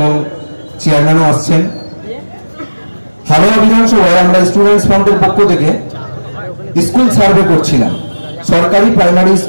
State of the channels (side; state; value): both; inverted; correlation -1.00